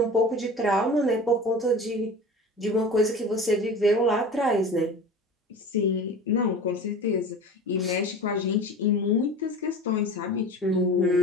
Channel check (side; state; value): both; normal; correlation 0.36